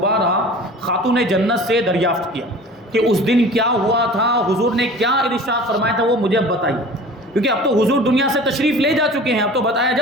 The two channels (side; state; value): both; normal; correlation 0.41